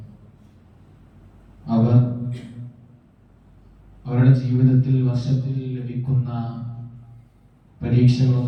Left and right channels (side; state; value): both; identical; correlation 1.00